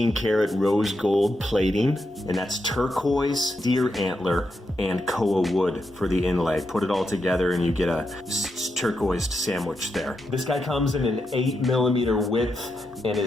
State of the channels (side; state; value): both; normal; correlation 0.85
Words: karat rose gold plating, and that's turquoise, deer antler, and Koa wood for the inlay. Put it all together and you get a turquoise sandwich there. This guy comes in an 8mm width and